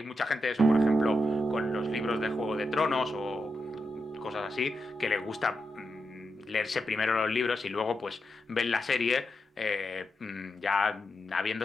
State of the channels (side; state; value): both; normal; correlation 0.86